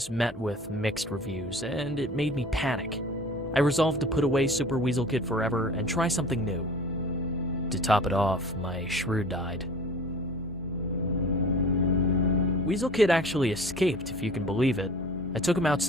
met with mixed reviews, and it made me panic. I resolved to put away Super Weasel Kid forever and try something new. To top it off, my shrew died. Weasel Kid actually escaped, if you can believe it. I took him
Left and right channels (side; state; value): both; normal; correlation 0.42